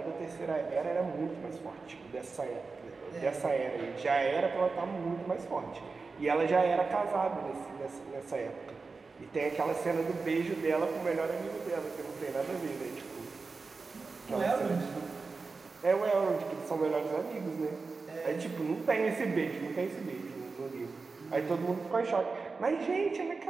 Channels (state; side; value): quieter; left; 4.3 dB